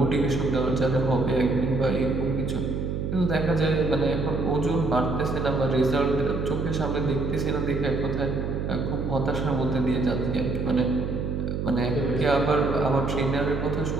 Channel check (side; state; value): right; noise; hum, 2 dB below the sound